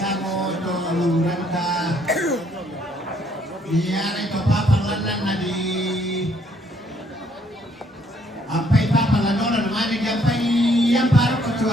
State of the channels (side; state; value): both; normal; correlation 0.67